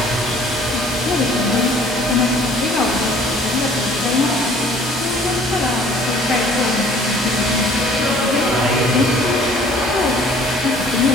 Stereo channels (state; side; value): normal; both; correlation 0.54